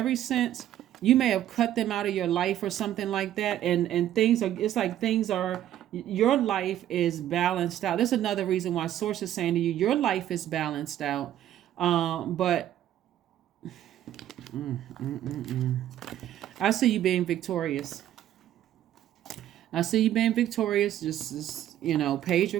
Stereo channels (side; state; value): left; quieter; 12.0 dB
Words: since you may have cut them out of your life or something like that, and things are, it's like things are, your life is balanced out. That's another reason why Source is saying to you, your life is balanced out. But I see you being victorious. I see you being victorious. Just Page